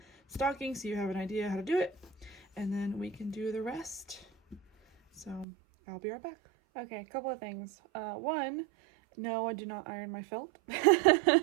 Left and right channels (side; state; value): left; drops out; at 5.5 s